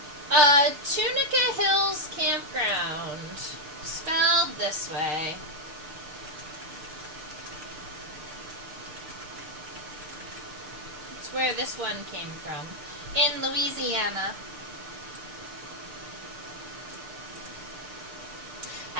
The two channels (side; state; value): left; late; 6.6 ms